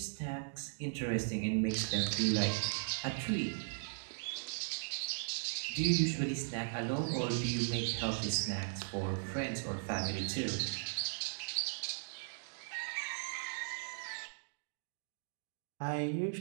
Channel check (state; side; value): silent; left; digital silence